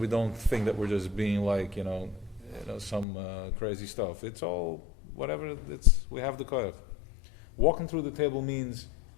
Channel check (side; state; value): right; drops out; at 3.1 s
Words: don't think that we're just being like, some crazy stuff. It's all whatever. We have the koyach. Walking through the table means